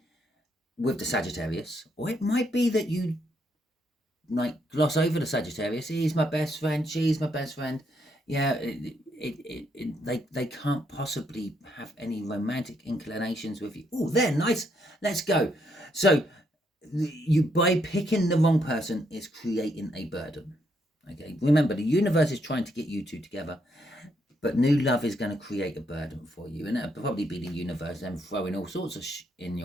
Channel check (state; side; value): normal; both; correlation 0.75